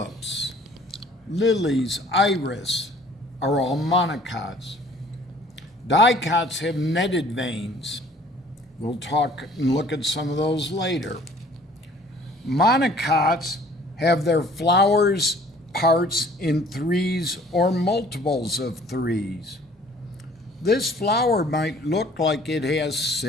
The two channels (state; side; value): normal; both; correlation 0.54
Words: lilies, iris are all monocots. Dicots have netted veins. We'll talk and look at some of those later. Monocots have their flowers parts in threes or multiples of threes. This flower might look like it has